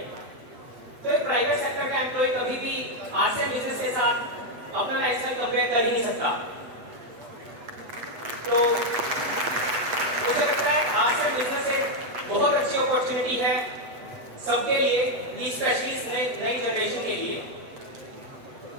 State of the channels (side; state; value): left; late; 8.1 ms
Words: तो एक प्राइवेट सेक्टर का एम्प्लॉय कभी भी RCM बिजनेस के साथ अपना लाइफस्टाइल कंपेयर कर ही नहीं सकता। तो मुझे लगता है RCM बिजनेस एक बहुत अच्छी अपॉर्चुनिटी है सबके लिए, स्पेशली नई जनरेशन के लिए।